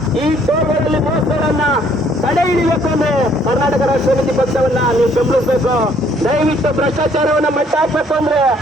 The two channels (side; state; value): both; normal; correlation 0.63